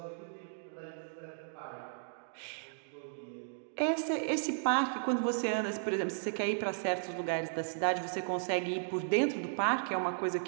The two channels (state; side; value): silent; left; digital silence